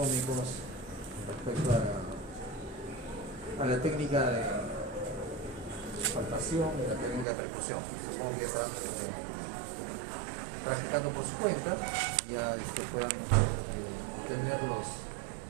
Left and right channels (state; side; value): drops out; left; at 7.2 s